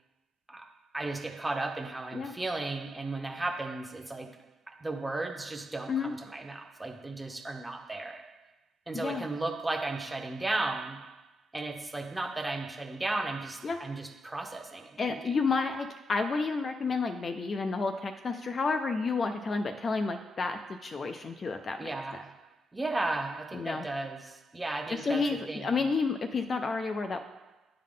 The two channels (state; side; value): normal; both; correlation 0.85